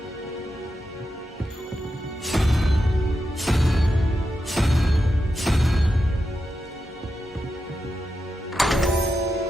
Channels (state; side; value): normal; both; correlation 0.88